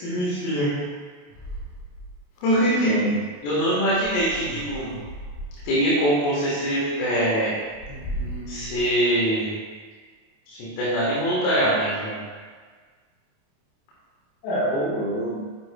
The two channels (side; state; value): right; late; 28 ms